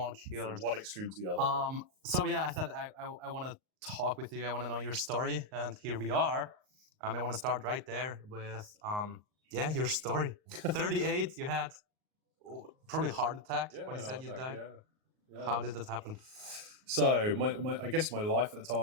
kilos. From one extreme to the other. So yeah, I said I want to talk with you. I want to know your story, and here we are. I want to start right there with your story. 38, you had probably a heart attack when you said you died. Yeah. How did that happen? So I guess my life at the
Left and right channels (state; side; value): late; left; 38 ms